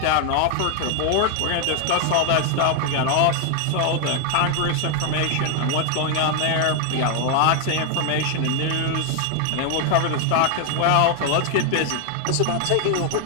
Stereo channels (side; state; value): both; different; correlation 0.00